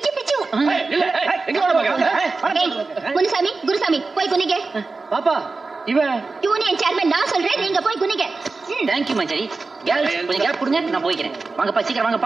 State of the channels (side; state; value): left; quieter; 3.9 dB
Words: எங்க முனுசாமி குருசாமி போய் குனிங்க. பாப்பா இவன் யூனியன் சேர்மன் நான் சொல்றேன், நீங்க போய் குனிங்க. தேங்க்யூ மஞ்சரி. கேர்ள்ஸ் கொஞ்சம் கேப் கொடுங்க, நான் போய்க்கிறேன். வாங்கப்பா சீக்கிரம்